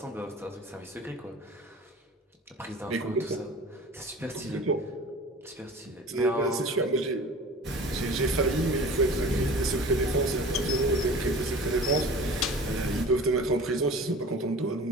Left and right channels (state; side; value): normal; both; correlation 0.40